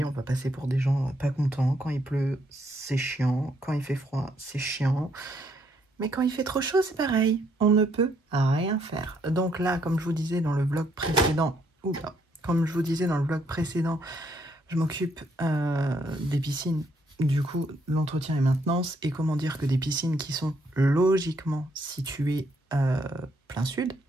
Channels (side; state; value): both; normal; correlation 0.71